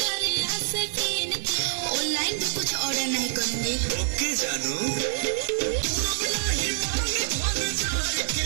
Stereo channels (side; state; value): left; silent; digital silence